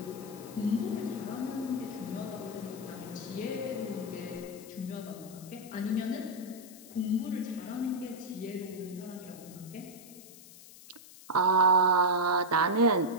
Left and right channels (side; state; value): left; noise; hiss, 19 dB below the sound